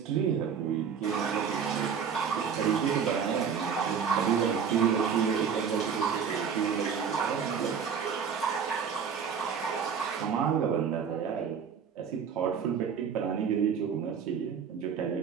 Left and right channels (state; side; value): quieter; left; 6.9 dB